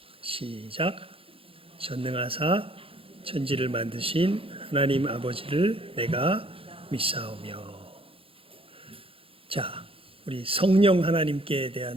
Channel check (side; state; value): left; late; 0.27 ms